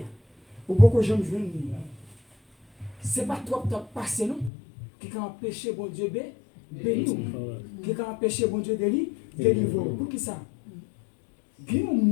ou beaucoup de gens viennent. C'est pas trop temps passé, non? Qui a empêché bon Dieu béni, qui a empêché bon Dieu délivrer. Pour qui ça? Il y a un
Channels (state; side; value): drops out; right; at 4.5 s